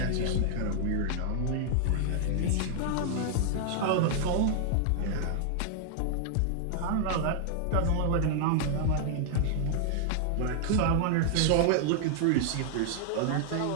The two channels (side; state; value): both; different; correlation -0.01